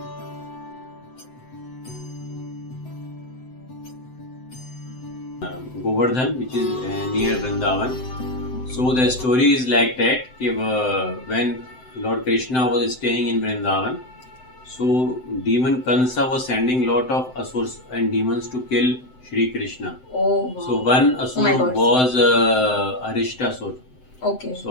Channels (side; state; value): right; late; 7.8 ms